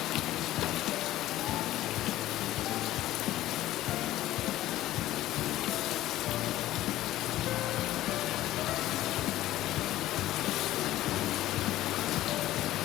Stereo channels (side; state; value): right; quieter; 14.8 dB